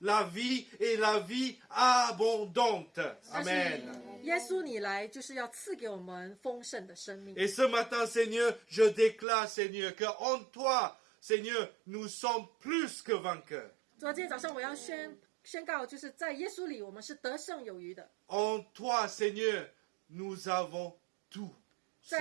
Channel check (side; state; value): left; drops out; at 9.2 s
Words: vie et la vie abondante. 但是 Amen. 耶稣你来就是要赐给我们丰盛的生命。 Et ce matin, Seigneur, je déclare, Seigneur, qu'en toi, Seigneur, nous sommes plus que vainqueurs. 昨天早上我要宣告，就是在耶稣里，我们是得胜有余的。 En toi, Seigneur, nous avons tout ce